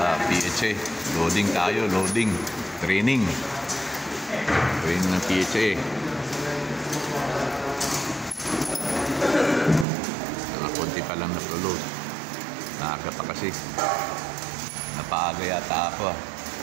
PHA. Loading tayo, loading. Training. Training ng PHA. Nakakunti pa lang na-load. Naaga pa kasi. Napaaga yata ako.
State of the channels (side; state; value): left; drops out; at 9.9 s